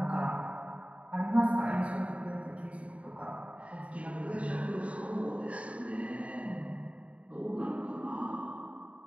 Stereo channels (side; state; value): left; late; 0.064 ms